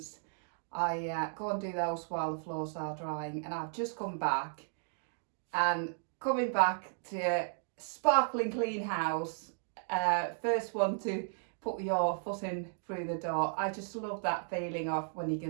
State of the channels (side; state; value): left; silent; digital silence